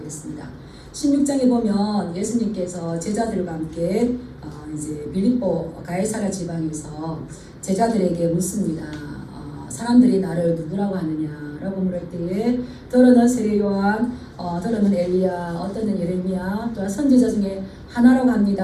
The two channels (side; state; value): both; identical; correlation 1.00